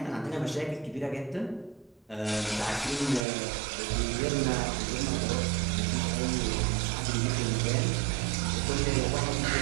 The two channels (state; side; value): drops out; left; at 3.2 s